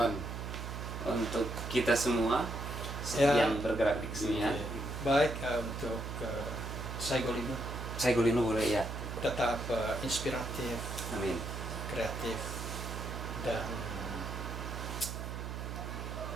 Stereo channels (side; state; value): right; noise; hum, 6 dB below the sound